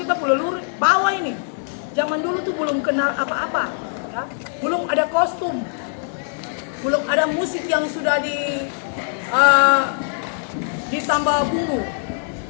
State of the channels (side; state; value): right; silent; digital silence